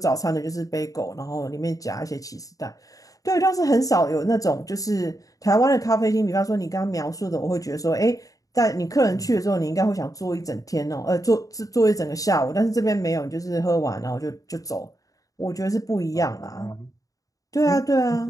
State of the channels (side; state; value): right; late; 0.17 ms